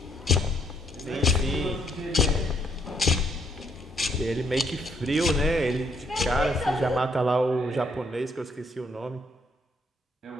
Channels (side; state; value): both; normal; correlation 0.69